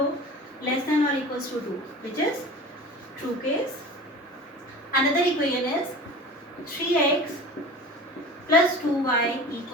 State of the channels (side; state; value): both; normal; correlation 0.37